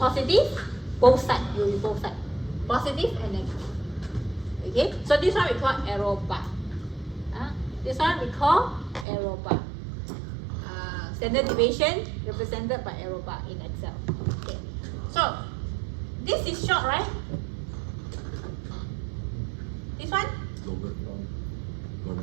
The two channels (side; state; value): left; drops out; at 9.1 s